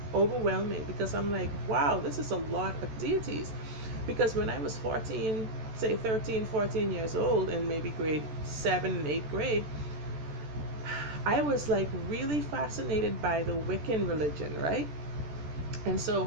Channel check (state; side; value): late; left; 14 ms